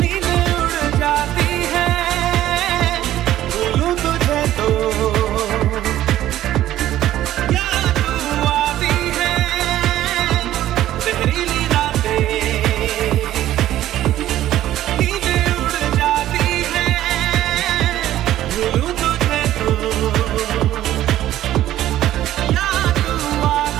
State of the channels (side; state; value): left; quieter; 13.3 dB